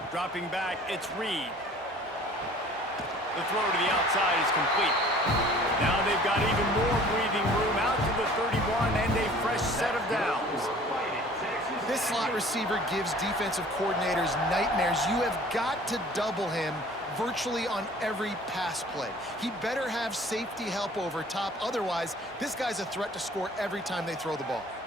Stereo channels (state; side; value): normal; both; correlation 0.50